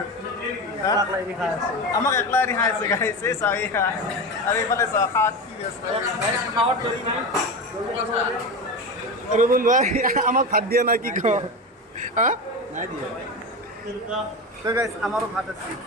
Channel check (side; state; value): both; normal; correlation 0.22